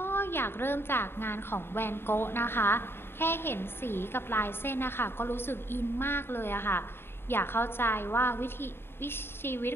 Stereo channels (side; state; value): right; late; 0.11 ms